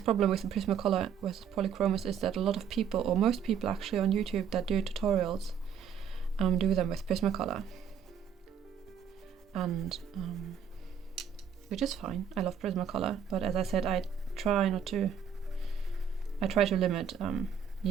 problem with the Prismacolor with polychromas is that a lot of people, or most people actually on YouTube that do tutorials, do them with Prismacolor, and which is fine. I love Prismacolor, but as I said, I try to limit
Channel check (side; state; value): left; quieter; 7.6 dB